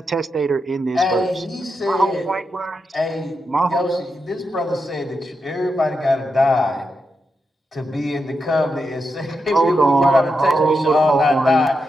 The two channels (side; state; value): both; normal; correlation 0.85